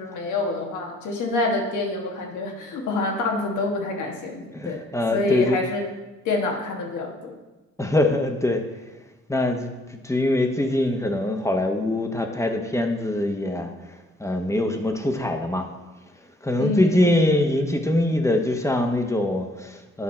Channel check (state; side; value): normal; both; correlation 0.64